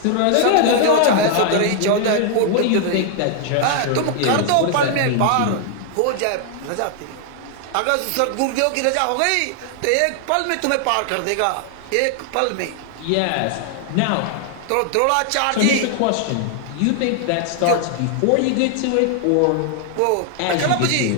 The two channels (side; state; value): both; different; correlation 0.00